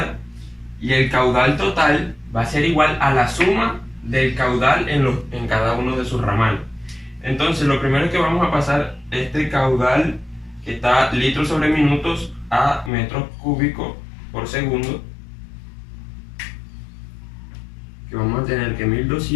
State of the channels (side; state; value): right; drops out; at 12.9 s